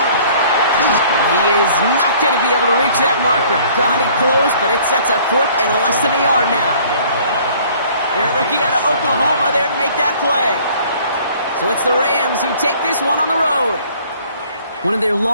And he is not going to be able to reach that marker. Got it close, but it sets up 4th and less than a yard now. They're a rookie out of Oklahoma there to make that play. So it's the Rams who take this one on the road. One of their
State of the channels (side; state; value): both; inverted; correlation -0.55